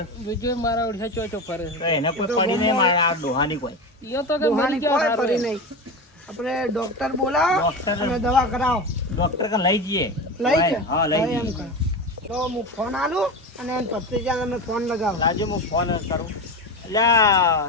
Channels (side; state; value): both; normal; correlation 0.23